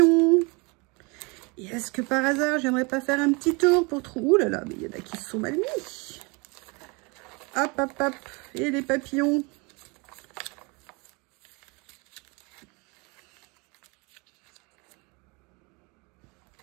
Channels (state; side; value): quieter; left; 28.9 dB